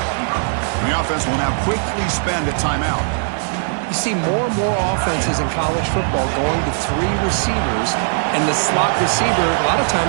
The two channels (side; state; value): left; silent; 66 dB below the other